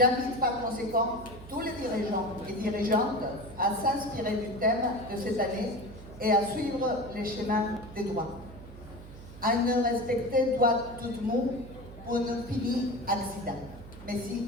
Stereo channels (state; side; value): noise; right; hum, 16 dB below the sound